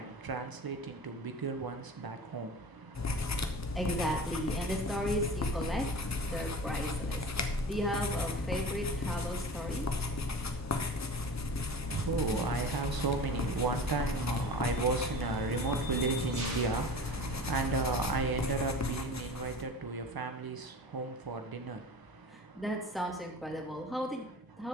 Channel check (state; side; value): normal; both; correlation 0.36